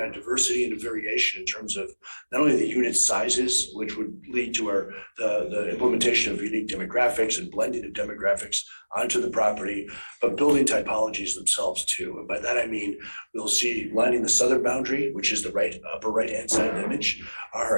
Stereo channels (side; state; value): both; inverted; correlation -1.00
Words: diversity and variation in terms of not only the unit sizes, which would lead to the implementation of unique demographics and blending of demographics onto the property, but building typologies themselves too. And by that I mean, we'll see lining the southern boundary, which is the upper right-hand side of the image, are